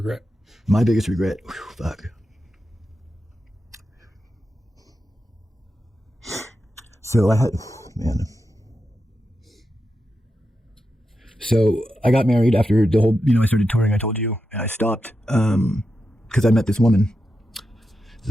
My biggest regret? Whew, fuck. So So I got married after the whole, I started touring, I told you, and I stopped because I met this woman,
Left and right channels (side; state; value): both; normal; correlation 0.88